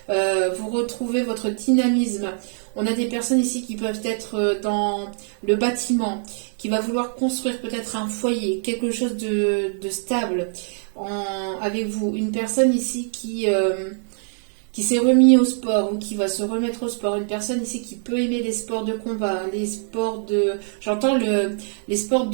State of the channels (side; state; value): left; silent; 63 dB below the other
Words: Vous retrouvez votre dynamisme. On a des personnes ici qui peuvent être dans le bâtiment, qui va vouloir construire peut-être un foyer, quelque chose de stable avec vous. Une personne ici qui qui s'est remis au sport ou qui va se remettre au sport, une personne ici qui peut aimer les sports de combat, les sports de... J'entends les sports